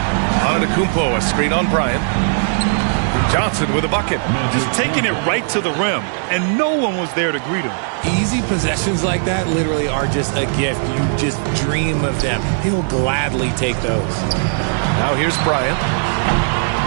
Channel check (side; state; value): left; silent; 67 dB below the other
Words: Antetokounmpo, a screen on Bryant. Johnson with a bucket. Just taking it right to the rim, and no one was there to greet him. Easy possessions like that literally are just a gift. You just dream of them. He'll gladly take those. Now here's Bryant.